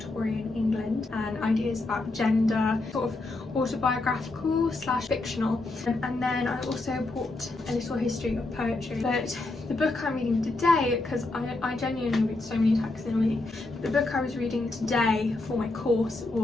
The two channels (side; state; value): right; quieter; 3.1 dB